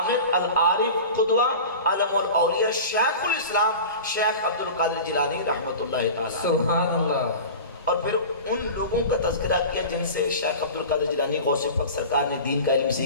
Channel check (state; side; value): inverted; both; correlation -0.35